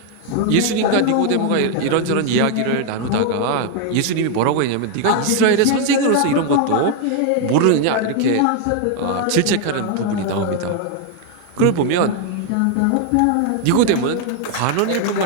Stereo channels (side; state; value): both; different; correlation 0.00